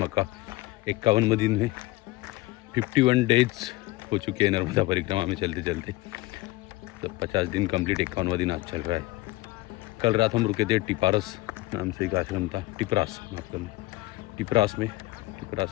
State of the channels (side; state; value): right; quieter; 20.3 dB